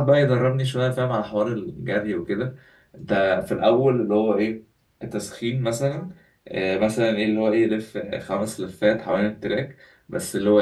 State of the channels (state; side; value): identical; both; correlation 1.00